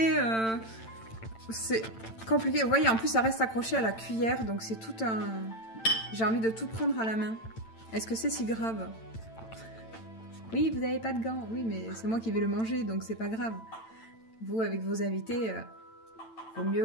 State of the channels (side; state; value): right; late; 8.9 ms